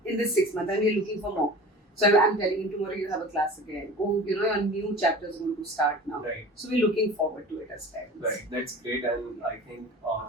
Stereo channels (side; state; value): both; normal; correlation 0.38